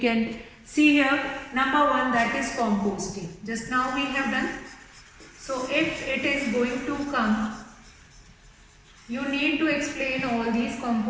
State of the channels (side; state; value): both; identical; correlation 1.00